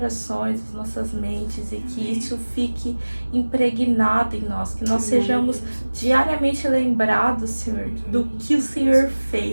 as nossas mentes, e que isso fique impregnado em nós, que nós sejamos diariamente lembrados, Senhor, do que o Senhor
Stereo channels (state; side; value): inverted; both; correlation -1.00